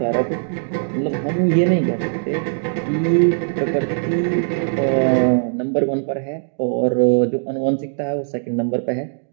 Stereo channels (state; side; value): silent; left; digital silence